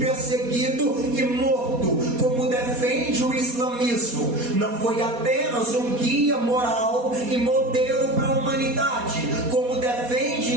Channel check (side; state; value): left; late; 4.2 ms